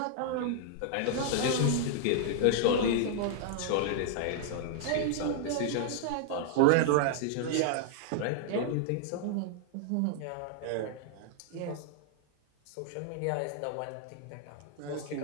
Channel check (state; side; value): different; both; correlation 0.00